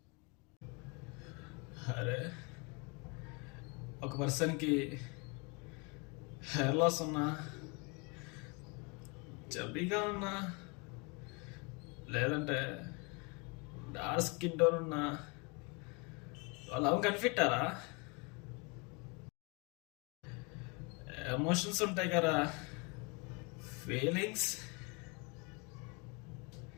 అరే, ఒక పర్సన్కి హెయిర్ లాస్ ఉన్నా, చబ్బీగా ఉన్నా, లేదంటే డార్క్ స్కిన్ టోన్ ఉన్నా, వాళ్ళు కనిపెట్టారా? ఎమోషన్స్ ఉంటాయి కదా, ఫీలింగ్స్.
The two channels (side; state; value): right; quieter; 29.8 dB